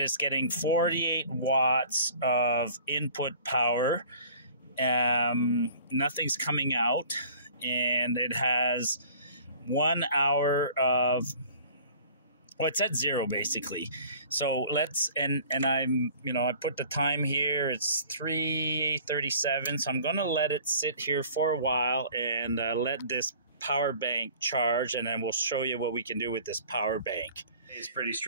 it's getting 48 watts of input power. Nothing's coming out, and it has 1 hour of... Well, it's at 0 basically. So I put the time here. It's 3:37. So I'm going to let it sit here for a while and let this power bank charge, and then we'll show you what we can do with this power bank. It's pretty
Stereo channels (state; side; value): inverted; both; correlation -0.48